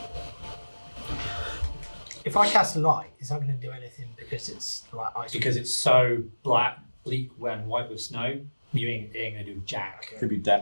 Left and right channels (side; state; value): both; inverted; correlation -1.00